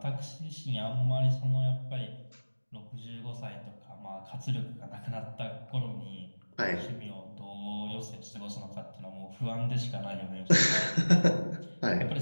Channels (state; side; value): inverted; both; correlation -1.00